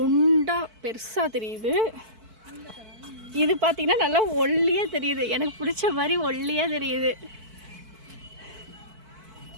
பெருசாக தெரியுது. இது பார்த்தீங்கன்னா நல்லா ஒல்லியாக தெரியுது. எனக்கு பிடிச்ச மாதிரி ஒல்லியாக தெரியுது.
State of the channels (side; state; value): left; late; 4.5 ms